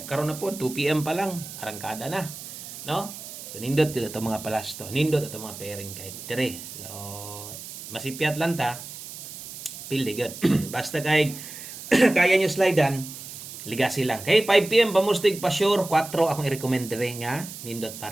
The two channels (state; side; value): noise; right; hiss, 12 dB below the sound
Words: karon na po 2 PM pa lang arangkada na. No? So nindot gyud ato mga palasto. Nindot ato mga pairing kay dire. So masipyat lang ta. Pilde gyud. Basta kay kaya nyo slidean, ligasi lang. Kay 5 PM pamustig pa sure 4 akong i-recommend dire nga nindot